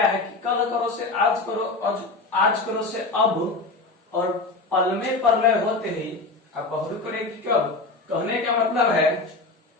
है कि कल करो से आज करो, आज करो से अब, और पल में प्रलय होते ही अब बहुरी करेगी कब। कहने का मतलब है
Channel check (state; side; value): quieter; right; 3.5 dB